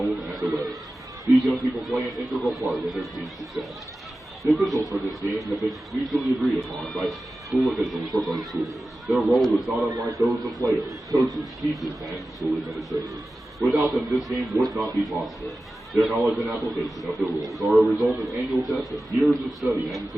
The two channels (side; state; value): both; normal; correlation 0.95